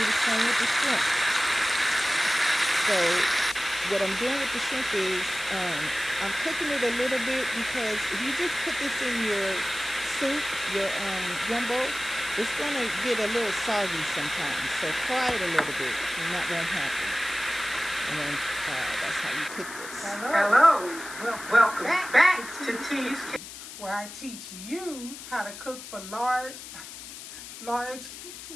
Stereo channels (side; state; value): left; noise; hiss, 12 dB below the sound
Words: the same with the shrimp. So what I'm doing with the shrimp is I'm cooking it a little bit because if you just put this in your soup, your gumbo, it's going to get a little soggy sometimes. So fry it a little bit and that won't happen. And then that's how you cook this. Hello. Welcome back to T's, where I teach you how to cook for large meals